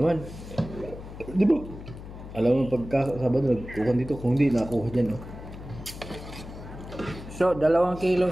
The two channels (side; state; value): left; noise; hum, 13 dB below the sound